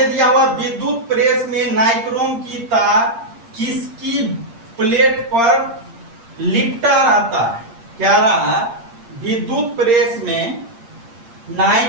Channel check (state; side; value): late; left; 8.6 ms